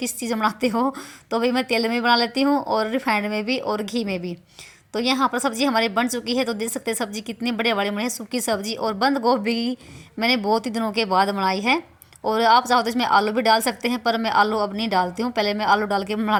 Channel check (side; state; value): both; identical; correlation 1.00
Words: चीज़ में बनाते हो, तो भाई मैं तेल में बना लेती हूँ और रिफाइंड में भी और घी में भी। तो यहाँ पर सब्ज़ी हमारी बन चुकी है, तो देख सकते हैं सब्ज़ी कितने बड़े बड़े बने हैं, सूखी सब्ज़ी। और बंद गोभी मैंने बहुत ही दिनों के बाद बनाई है। और आप चाहो तो इसमें आलू भी डाल सकते हैं, पर मैं आलू अब नहीं डालती हूँ, पहले मैं आलू डाल के